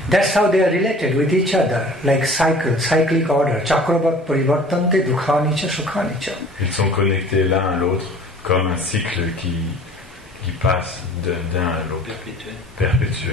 That's how they are related with each other, like cyclic order. Chakravat parivartante dukhani cha sukhani cha. Ils sont connectés l'un à l'autre comme un cycle qui passe d'un à l'autre,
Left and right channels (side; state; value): both; normal; correlation 0.47